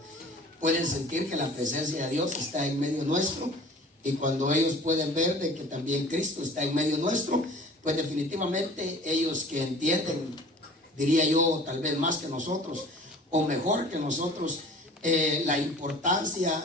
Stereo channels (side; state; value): both; normal; correlation 0.46